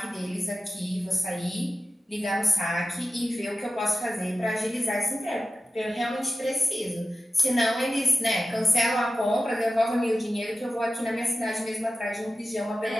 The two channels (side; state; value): both; normal; correlation 0.93